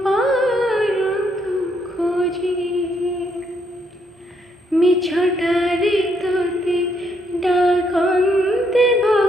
পারন্তু খোঁজি মিছটারে তোতে ডাকন্তে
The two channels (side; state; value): both; normal; correlation 0.73